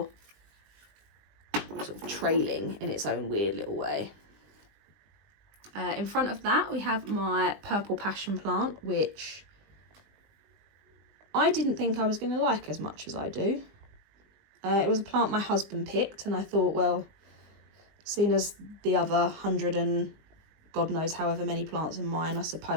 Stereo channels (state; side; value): late; left; 20 ms